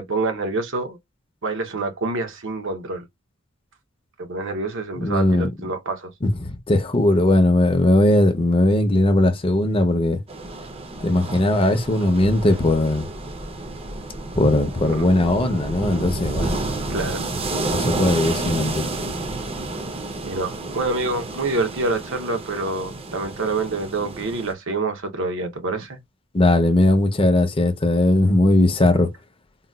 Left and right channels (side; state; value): both; normal; correlation 0.69